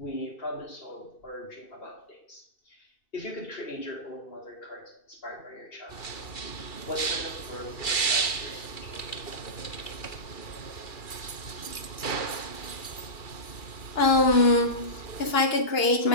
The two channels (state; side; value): late; right; 2.3 ms